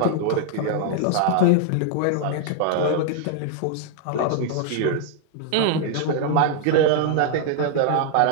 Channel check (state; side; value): different; both; correlation 0.00